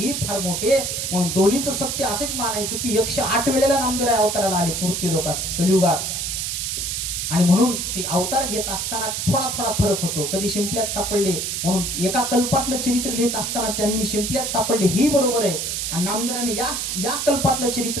फार मोठे. म्हणून दोन्हीचं सत्य असेच मानायचं की 108 वेळेला नामदेवराय अवताराला आले मूर्ती लोकात कलियुगात. आणि म्हणून ते अवतार घेत असताना थोडा थोडा फरक होतो. कधी शिंपल्यात सापडले, म्हणून एका कल्पातलं चरित्र लिहित असताना त्यांनी शिंपल्यात सापडले ही बरोबर आहे. आणि नामदेवराने या कल्पातलं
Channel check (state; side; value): noise; right; hiss, 2 dB below the sound